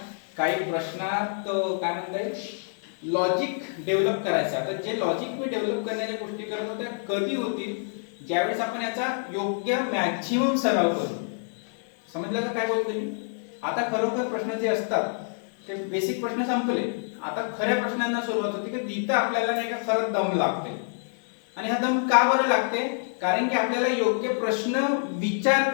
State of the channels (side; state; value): right; silent; digital silence